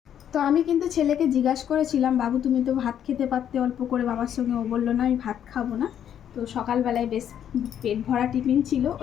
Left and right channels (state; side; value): quieter; right; 9.6 dB